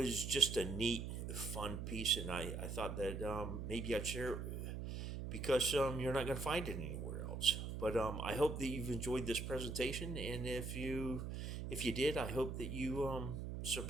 just a neat, fun piece, and I thought that maybe I'd share it, because you're not going to find it anywhere else. But I hope that you've enjoyed this presentation, and if you did, I hope that you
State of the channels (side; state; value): right; noise; hum, 5 dB below the sound